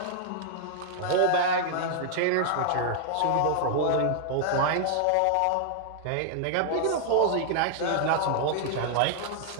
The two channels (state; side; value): different; both; correlation -0.01